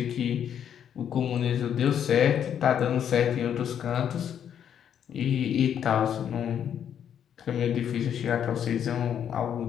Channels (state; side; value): quieter; right; 9.0 dB